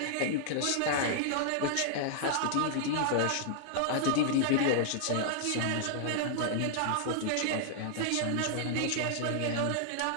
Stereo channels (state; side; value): different; both; correlation -0.01